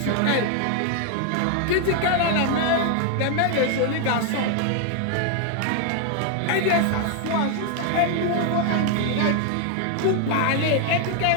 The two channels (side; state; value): both; different; correlation 0.00